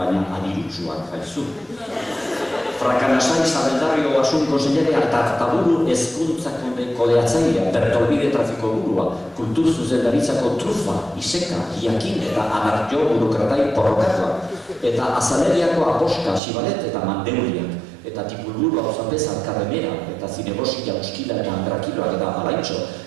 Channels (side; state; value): left; drops out; at 16.4 s